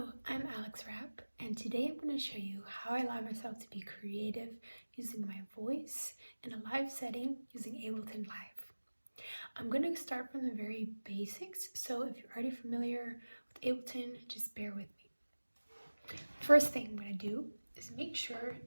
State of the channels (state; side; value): inverted; both; correlation -1.00